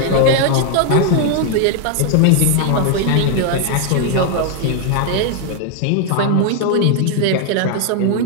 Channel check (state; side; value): different; both; correlation 0.00